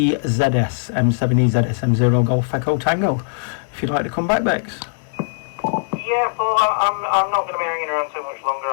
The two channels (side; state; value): right; silent; 57 dB below the other